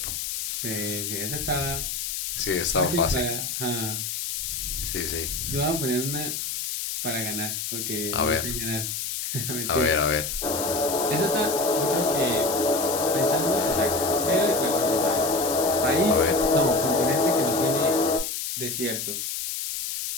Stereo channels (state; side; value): noise; left; hiss, 3 dB below the sound